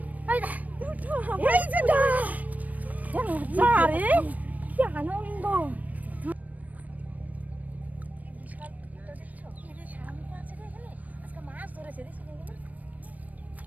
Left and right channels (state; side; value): late; left; 0.075 ms